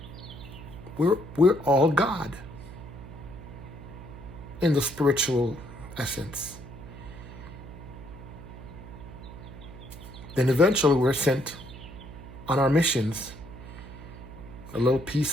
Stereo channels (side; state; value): right; noise; hum, 14 dB below the sound